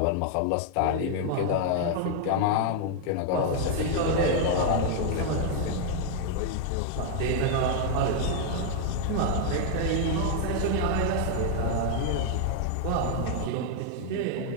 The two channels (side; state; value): both; different; correlation 0.00